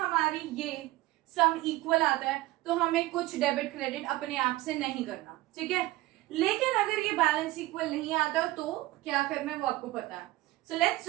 ये सम इक्वल आता है तो हमें कुछ डेबिट क्रेडिट अपने आप से नहीं करना, ठीक है। लेकिन अगर ये बैलेंस इक्वल नहीं आता तो क्या करना है वो आपको पता है। So let's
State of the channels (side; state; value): left; quieter; 17.8 dB